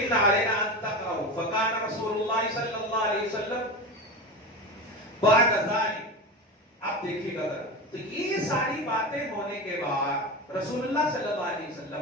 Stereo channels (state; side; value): normal; both; correlation 0.25